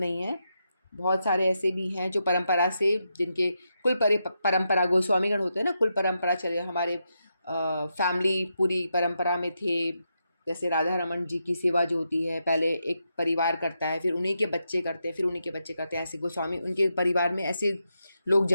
है। बहुत सारे ऐसे भी हैं जो परंपरा से, जिनके कुल परंपरा, गोस्वामीगण होते हैं ना, कुल परंपरा चले, हमारे फैमिली पूरी परंपरा में थे। जैसे राधा रमन जी की सेवा जो होती है, पहले एक परिवार करता है, फिर उन्हीं के बच्चे करते हैं, फिर उन्हीं के बच्चे करते हैं। ऐसे गोस्वामी, उनके परिवार में ऐसे लोग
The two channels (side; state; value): both; inverted; correlation -0.84